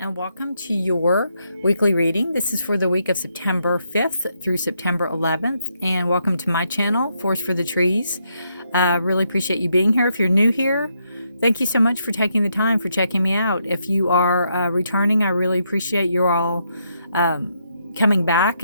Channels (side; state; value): both; inverted; correlation -0.78